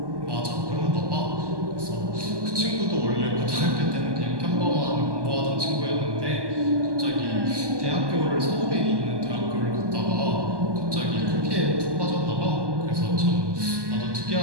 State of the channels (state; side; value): late; left; 1.2 ms